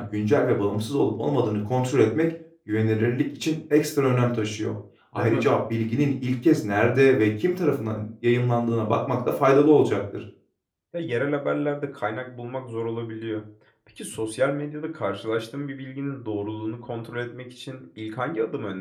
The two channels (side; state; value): both; identical; correlation 1.00